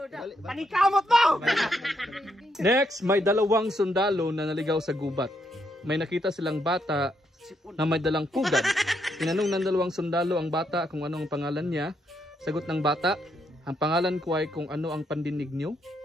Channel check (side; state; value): both; normal; correlation 0.77